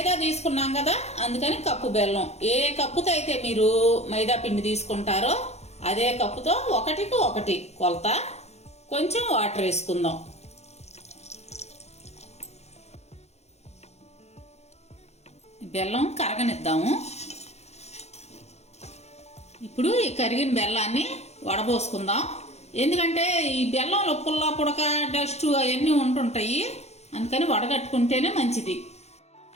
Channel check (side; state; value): right; late; 0.31 ms